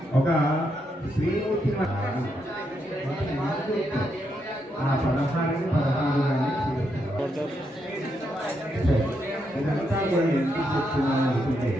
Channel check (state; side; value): normal; both; correlation 0.80